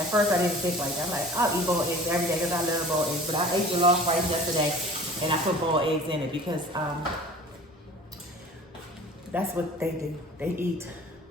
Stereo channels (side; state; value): both; normal; correlation 0.44